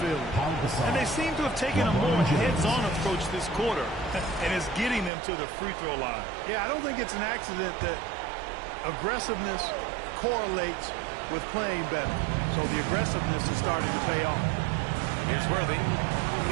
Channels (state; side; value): drops out; left; at 5.1 s